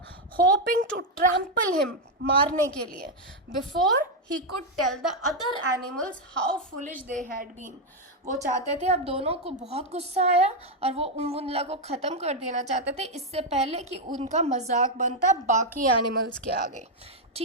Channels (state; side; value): normal; both; correlation 0.02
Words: hoping to trample him, मारने के लिए, before he could tell the other animals how foolish they had been. वो चाहते थे, अब दोनों को बहुत गुस्सा आया और वो उमवुंदला को ख़त्म कर देना चाहते थे इससे पहले कि उनका मजाक बनता बाकी एनिमल्स के आगे.